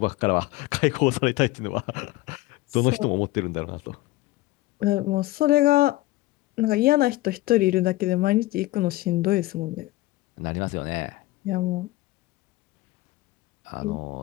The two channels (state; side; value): quieter; right; 18.3 dB